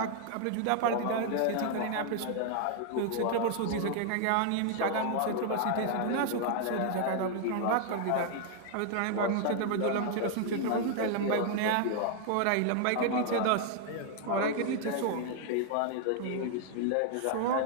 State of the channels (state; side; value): different; both; correlation 0.00